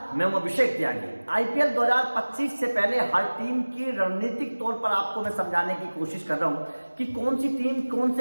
मैं हूं अभिषेक त्यागी। आईपीएल 2025 से पहले हर टीम की रणनीतिक तौर पर आपको मैं समझाने की कोशिश कर रहा हूं कि कौन सी टीम कौन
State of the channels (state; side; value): inverted; both; correlation -1.00